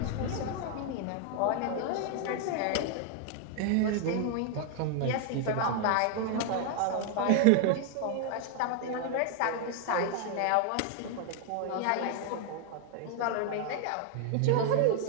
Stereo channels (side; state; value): both; different; correlation 0.00